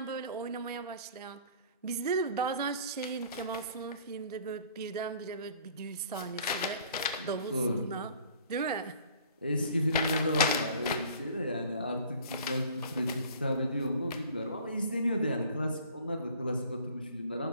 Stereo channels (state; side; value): inverted; both; correlation -0.51